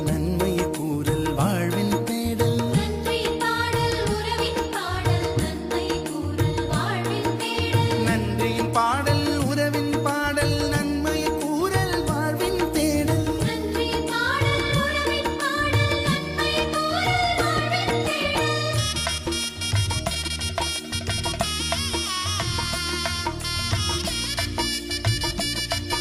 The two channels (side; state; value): both; identical; correlation 1.00